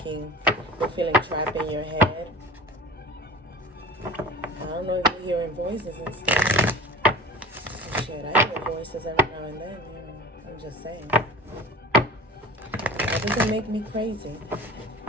you're feeling trapped in your head. I don't know if you're hearing voices and stuff. Shit, I hear voices every now and then, you know. I'm just saying. That doesn't make me crazy.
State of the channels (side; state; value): both; normal; correlation 0.37